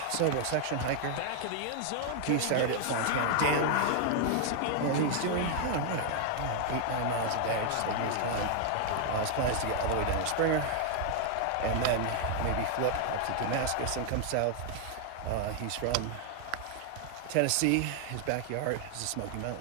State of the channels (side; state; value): both; different; correlation 0.00